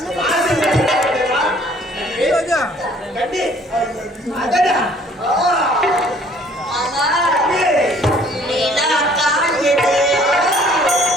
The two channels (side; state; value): both; normal; correlation 0.57